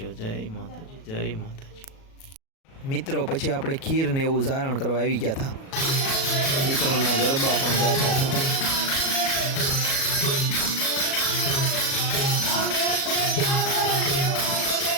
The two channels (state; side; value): late; right; 37 ms